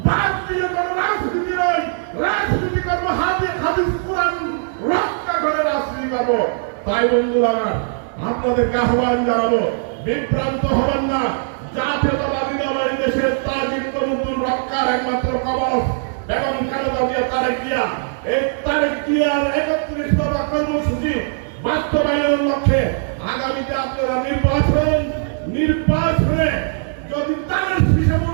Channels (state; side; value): silent; left; digital silence